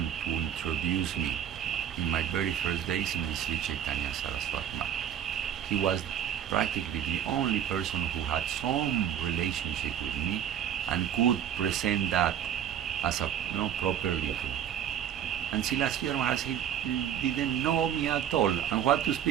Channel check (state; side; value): quieter; left; 9.8 dB